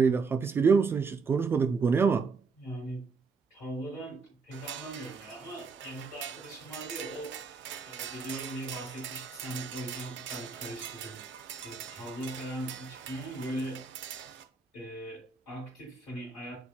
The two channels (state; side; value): quieter; left; 4.7 dB